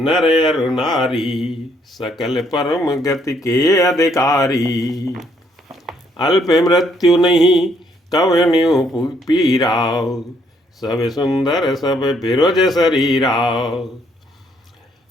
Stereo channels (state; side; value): normal; both; correlation 0.69